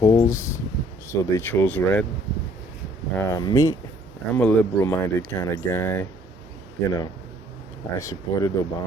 so they chose red. Me, I'm a liberal minded kind of guy. You know, I supported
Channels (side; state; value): both; normal; correlation 0.60